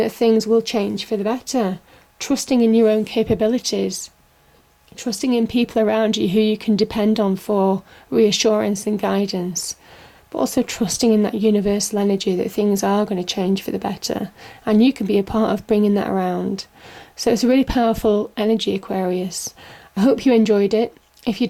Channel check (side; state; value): both; identical; correlation 1.00